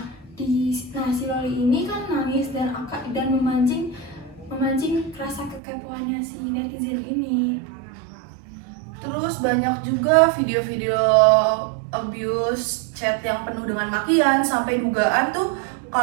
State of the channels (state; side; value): drops out; left; at 5.6 s